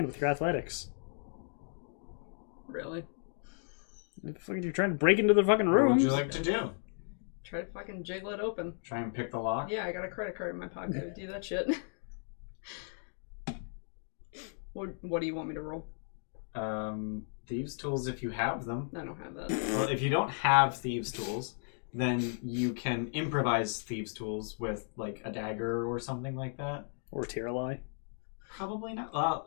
with your athletics. Really? You're trying to break into the fucking What room. would you like to do? Try to fucking jiggle it open. Try and pick the lock? Yeah, I got a credit card in my pocket to do that shit. What do you want me to roll? Thieves' tools if you have them. I don't have that. Well, if you don't have thieves' tools, then you can improvise thieves' tools with, like, a dagger or something like that. Or Tiralai. Probably not. Well,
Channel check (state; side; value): silent; right; 55 dB below the other